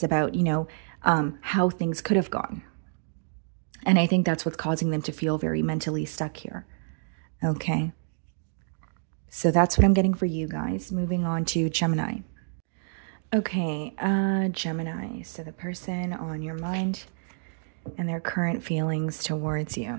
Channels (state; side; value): silent; left; digital silence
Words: about, you know, how things could have gone. And I think that's what's causing them to feel very mentally stuck here. Okay. So that's what I'm getting for you guys. Moving on to Gemini. Okay, Gemini. So the person on your mind and their current feelings towards you.